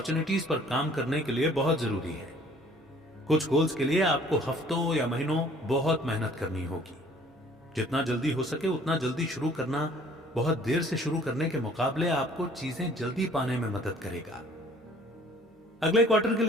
पर काम करने के लिए बहुत जरूरी है। कुछ गोल्स के लिए आपको हफ्तों या महीनों बहुत मेहनत करनी होगी। जितना जल्दी हो सके उतना जल्दी शुरू करना बहुत देर से शुरू करने के मुकाबले आपको चीजें जल्दी पाने में मदद करेगा। अगले क्वार्टर के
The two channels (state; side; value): normal; both; correlation 0.55